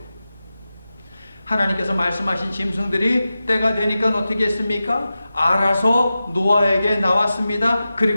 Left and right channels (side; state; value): both; inverted; correlation -0.93